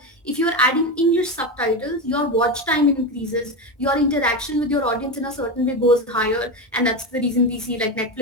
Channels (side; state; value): both; normal; correlation 0.17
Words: if you're adding English subtitles, your watch time increases, your interaction with your audience in a certain way goes higher. And that's the reason we see like